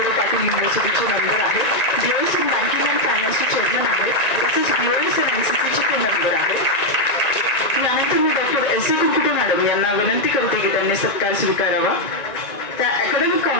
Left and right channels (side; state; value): right; late; 1.9 ms